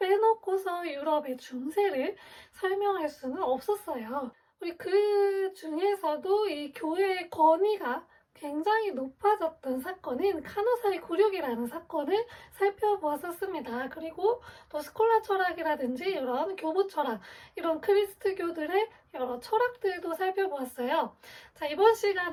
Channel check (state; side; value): identical; both; correlation 1.00